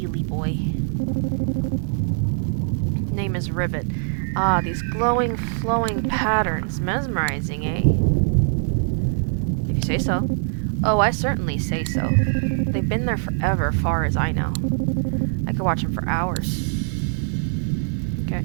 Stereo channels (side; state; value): left; silent; 60 dB below the other